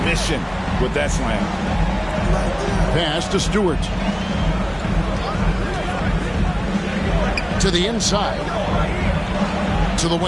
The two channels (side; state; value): both; identical; correlation 1.00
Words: mission with that slam. Pass to Stewart. To the inside. To the